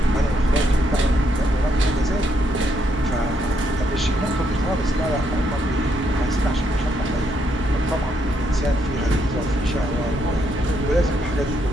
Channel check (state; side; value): normal; both; correlation 0.76